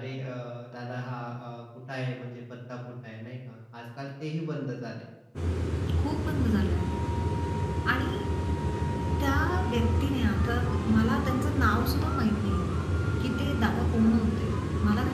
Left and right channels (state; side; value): identical; both; correlation 1.00